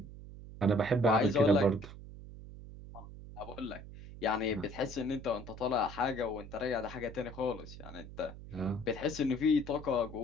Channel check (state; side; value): noise; right; hum, 14 dB below the sound